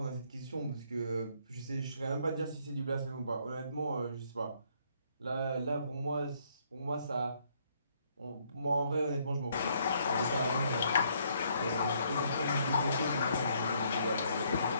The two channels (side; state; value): both; inverted; correlation -0.68